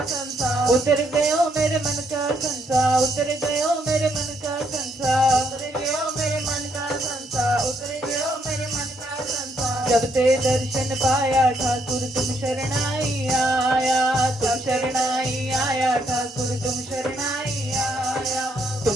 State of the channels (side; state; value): both; normal; correlation 0.73